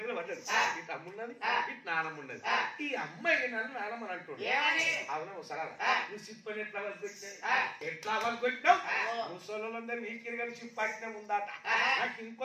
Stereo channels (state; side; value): identical; both; correlation 1.00